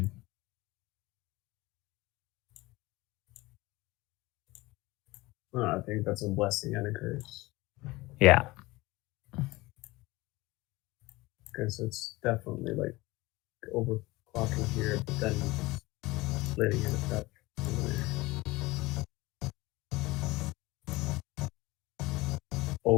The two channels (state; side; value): quieter; right; 20.8 dB